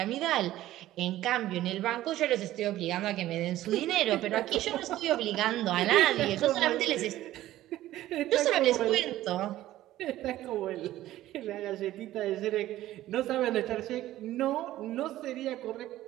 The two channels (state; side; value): quieter; left; 14.6 dB